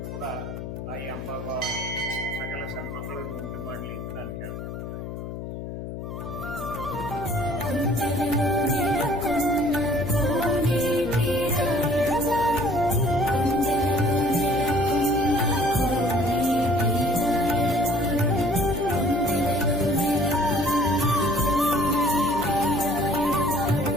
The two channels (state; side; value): noise; left; hum, 8 dB below the sound